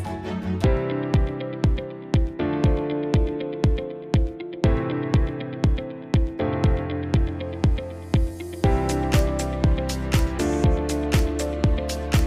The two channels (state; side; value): identical; both; correlation 1.00